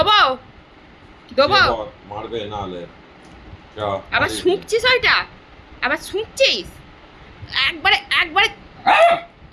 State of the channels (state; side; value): identical; both; correlation 1.00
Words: দেবো। শুয়ে পড়, মারবে নাহলে চ, আবার মারিস নে। শুঁকছিস ওইটা? আবার শুঁকছিস? একবারে একবারে